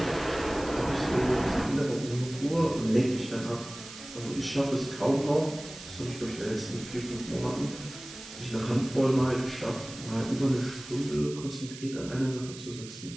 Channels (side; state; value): right; noise; hiss, 14 dB below the sound